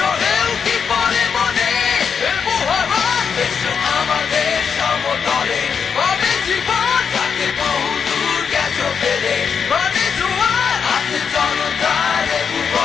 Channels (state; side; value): quieter; right; 6.5 dB